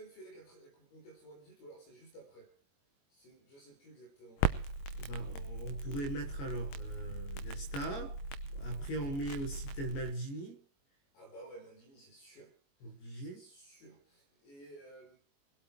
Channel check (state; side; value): late; right; 21 ms